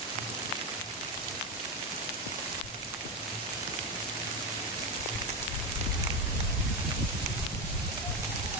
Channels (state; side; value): normal; both; correlation 0.13